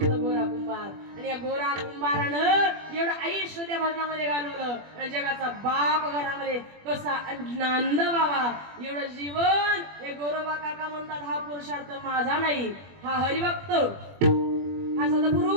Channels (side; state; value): left; late; 21 ms